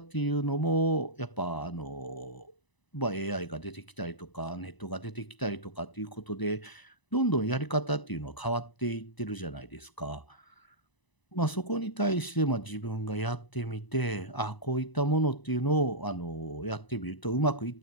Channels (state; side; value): late; right; 1.0 ms